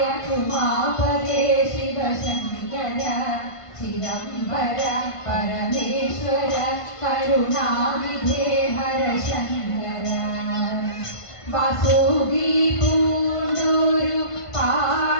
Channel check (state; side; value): late; right; 1.5 ms